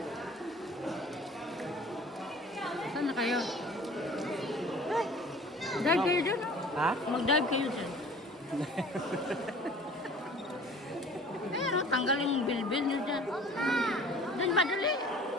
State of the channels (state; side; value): normal; both; correlation 0.47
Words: Saan na kayo? Ay, dive kayo dyan. Ha? Mag-dive kayo dyan. Pero tanggal yung bilbil nyo dyan. Dyan ba dali?